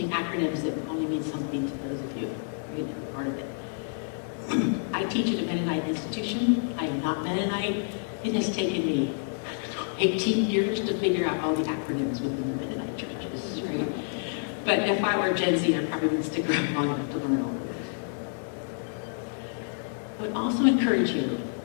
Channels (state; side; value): silent; right; digital silence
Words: acronyms that only mean something to those of you who are part of it. I teach at a Mennonite institution. I am not Mennonite. It has taken me 18 years to figure out all the acronyms within the Mennonite churches, right? But if I were Gen Z, I probably wouldn't stick around long enough to learn all of this. I would also encourage you